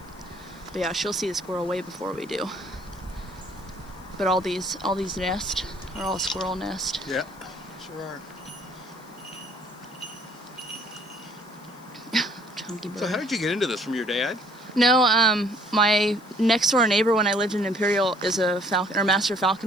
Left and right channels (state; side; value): noise; left; hiss, 27 dB below the sound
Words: But yeah, she'll see the squirrel way before we do. But all these nests are all squirrel nest. Yeah, sure are. So how did you get into this? From your dad? No, my next door neighbor when I lived in Imperial is a master